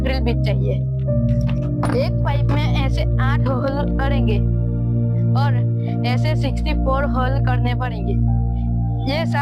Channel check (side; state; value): both; identical; correlation 1.00